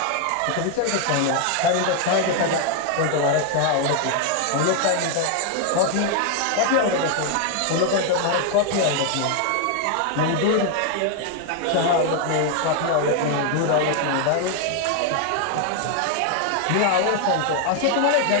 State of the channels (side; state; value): both; different; correlation 0.00